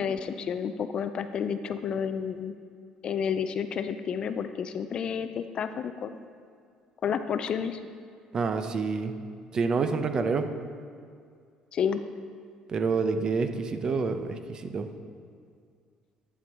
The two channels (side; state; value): both; normal; correlation 0.68